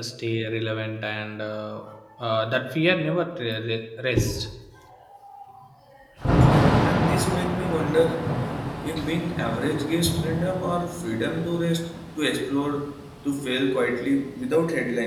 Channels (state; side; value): identical; both; correlation 1.00